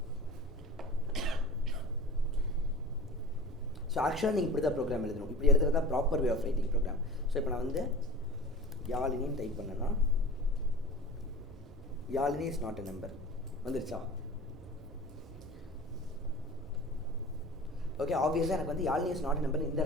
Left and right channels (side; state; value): both; normal; correlation 0.38